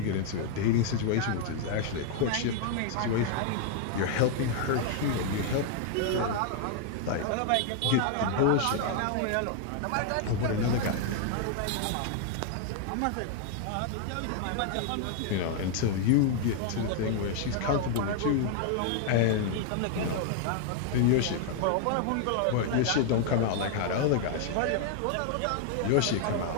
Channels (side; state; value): both; different; correlation 0.00